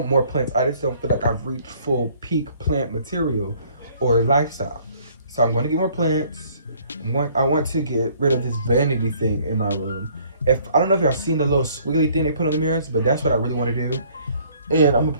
more plants. I just don't feel like I've reached full peak plant material or lifestyle. So I'm going to get more plants. I want to get rid of this vanity thing in my room. I don't know if y'all seen the little squiggly thing they put on the mirrors, but that's what I really want to do. And I'm going to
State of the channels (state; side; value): inverted; both; correlation -0.60